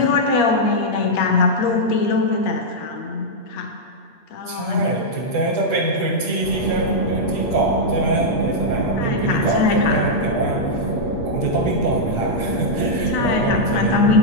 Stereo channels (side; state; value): right; late; 8.5 ms